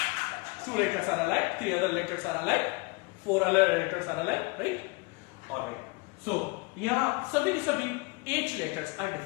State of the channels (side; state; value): right; quieter; 27.5 dB